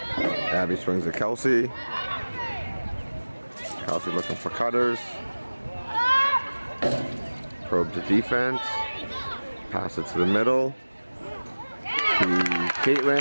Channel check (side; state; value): both; inverted; correlation -1.00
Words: Abby swings to Kelsey. Kelsey looking for cutters. Probe the defense. Pass it to the middle. To